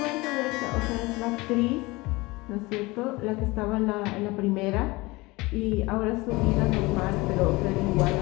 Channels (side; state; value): right; quieter; 22.6 dB